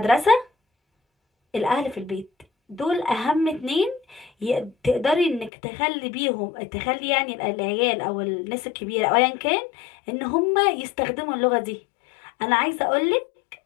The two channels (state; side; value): drops out; right; at 5.5 s